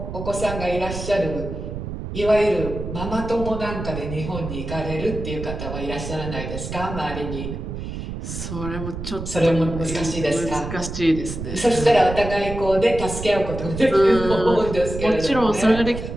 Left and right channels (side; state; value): right; noise; rumble, 7 dB below the sound